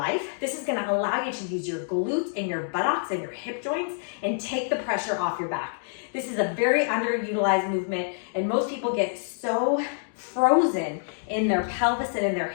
This is gonna allow you to use your glutes and your buttocks and your hip joints and take the pressure off your back. This is a very underutilized movement, and most people get so frozen in their pelvis and in their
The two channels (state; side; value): silent; right; digital silence